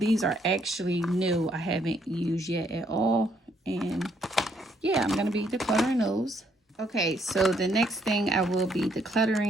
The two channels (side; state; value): both; normal; correlation 0.70